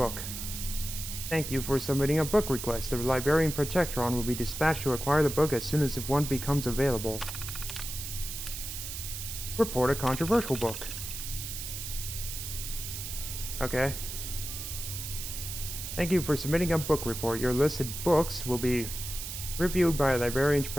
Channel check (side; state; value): right; noise; hiss, 7 dB below the sound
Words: Thank you for submitting a book request. The librarian Protectron will be dispatched to acquire the book as soon as one becomes available. Report a controversial book. Okay. Thank you for submitting a book report. Your listed books will be reviewed by a librarian